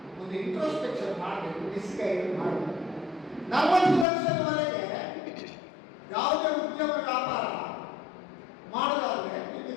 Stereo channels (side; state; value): right; drops out; at 4.0 s